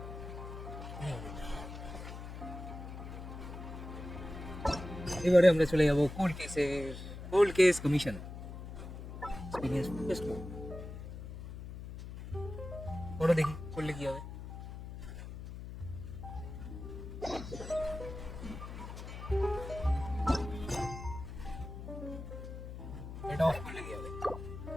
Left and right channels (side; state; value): left; noise; hum, 9 dB below the sound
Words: এবারে আমরা চলে যাব cold case commission experience test পড়ো, দেখি করলে কি হবে। এটা অফ করলে কি হবে,